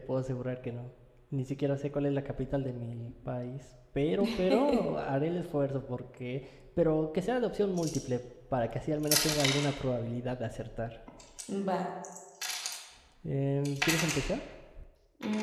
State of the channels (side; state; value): both; identical; correlation 1.00